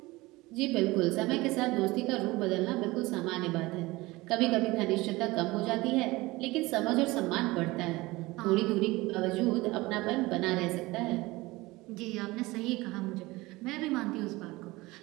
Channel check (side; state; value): left; quieter; 20.9 dB